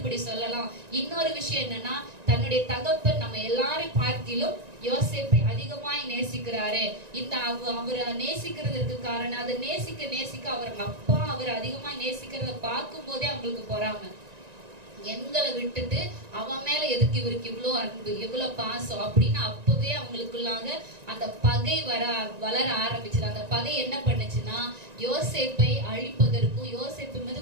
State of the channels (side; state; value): left; late; 1.9 ms